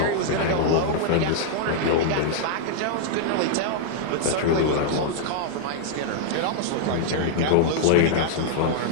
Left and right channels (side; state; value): both; different; correlation -0.01